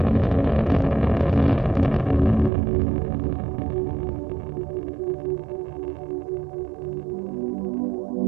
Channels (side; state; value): left; drops out; at 2.5 s